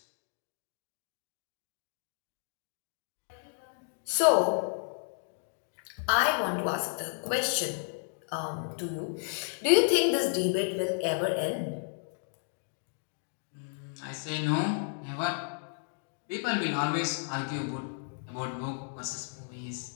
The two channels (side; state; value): right; silent; digital silence